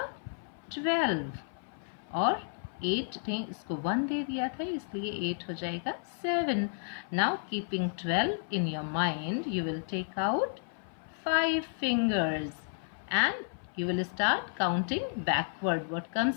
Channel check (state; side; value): silent; right; 55 dB below the other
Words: 12, और 8 ने इसको 1 दे दिया था, इसलिए 8 हो जाएगा 7. Now keeping 12 in your mind, you will take out 5 fingers and you will start counting backward. What